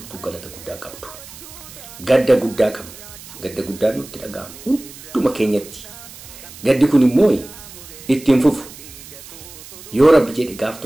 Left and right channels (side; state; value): right; noise; hiss, 17 dB below the sound